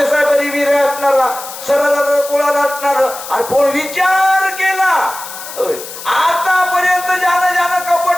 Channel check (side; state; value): left; noise; hiss, 12 dB below the sound